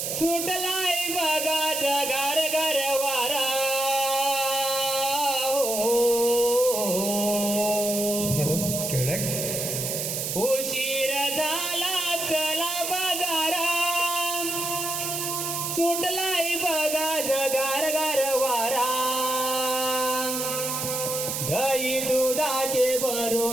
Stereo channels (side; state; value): right; noise; hiss, 2 dB below the sound